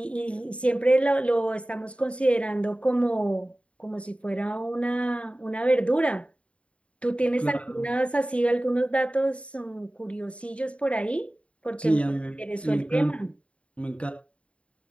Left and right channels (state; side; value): late; right; 0.061 ms